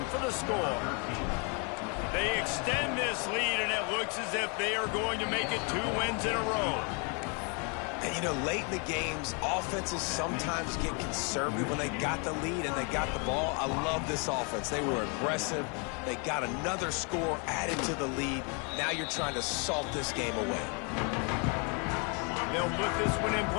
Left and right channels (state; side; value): quieter; right; 35.0 dB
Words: for the score. They extend this lead and it looks as if they are going to make it 2 wins in a row. And, you know, late in the games, offenses sometimes get conservative when they got the lead and they got the ball. I love this offense. They were aggressive. They got another score added to the lead. Now you're trying to salt this game away. They'll put this one in